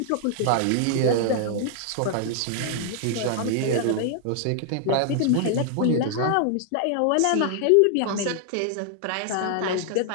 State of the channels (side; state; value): both; different; correlation 0.00